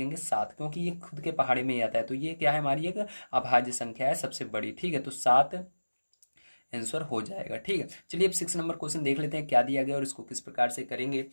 7, क्योंकि ये खुद के पहाड़े में ही आता है। तो ये क्या है, हमारी एक अभाज्य संख्या है सबसे बड़ी, ठीक है। तो 7 आंसर हो जाएगा। ठीक है, चलिए अब 6 नंबर क्वेश्चन देख लेते हैं क्या दिया गया और इसको किस प्रकार से करेंगे।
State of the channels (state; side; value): inverted; both; correlation -1.00